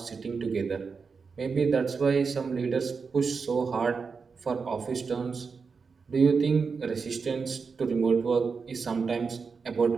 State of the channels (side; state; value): left; quieter; 5.2 dB